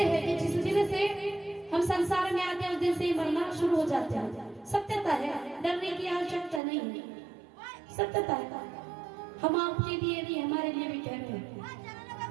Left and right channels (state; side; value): drops out; left; at 6.6 s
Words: है कि जिस दिन से हम संसार में आते हैं, उस दिन से ही मरना शुरू हो जाते हैं। सत्यता है, डरने की आवश्यकता नहीं है, सत्यता है। हम आपके लिए भी, हमारे लिए भी कह रहे हैं।